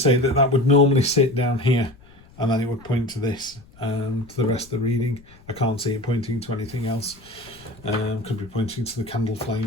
that would normally sit down here, and then it would point to this, to the rest of the reading. I can't see it pointing to anything else. Could be pointing to the candle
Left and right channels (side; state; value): left; noise; rumble, 25 dB below the sound